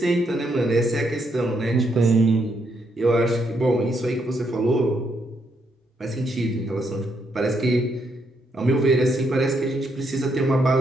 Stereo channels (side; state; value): both; normal; correlation 0.76